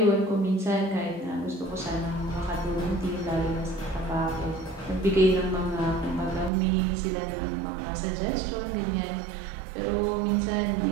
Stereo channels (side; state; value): left; drops out; at 6.5 s